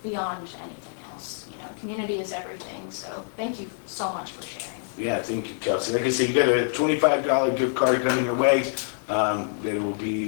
beyond anything else. Community is everything. So thank you so much for sharing. Yeah, thank you, Kelsey. Like I said, you got a $25 gift card coming your way.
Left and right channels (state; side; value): silent; right; digital silence